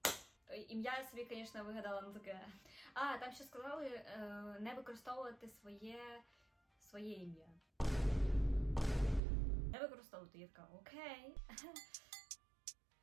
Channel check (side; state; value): left; drops out; at 9.2 s